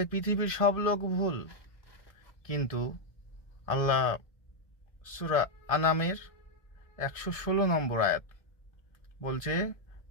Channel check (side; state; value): right; late; 1.5 ms